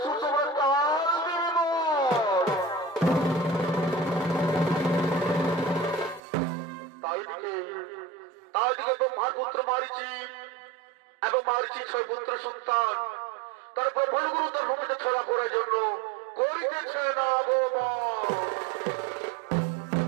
সুসমান কাল নির্মল। তাই দিকে ব্রহ্মার পুত্র মারিচি এবং মারিচির 6 পুত্র সন্তান তারপর ব্রহ্মগুরু তার ভূমিতে ছড়া করার জন্য করিতেছে না আগমন।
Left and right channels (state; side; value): drops out; left; at 6.2 s